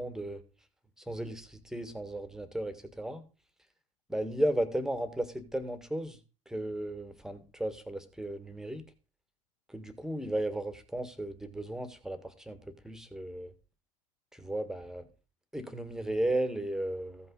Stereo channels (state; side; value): normal; both; correlation 0.93